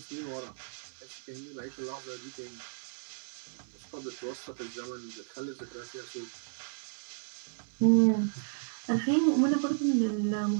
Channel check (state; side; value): silent; left; 56 dB below the other